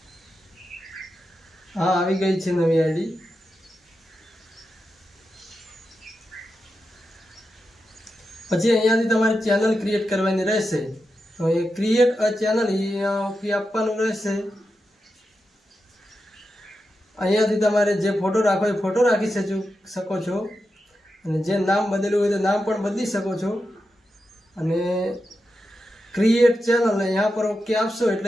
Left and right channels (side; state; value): both; normal; correlation 0.89